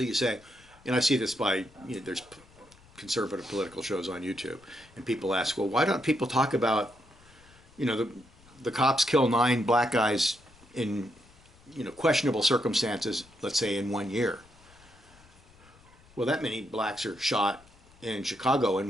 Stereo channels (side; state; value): left; noise; rumble, 27 dB below the sound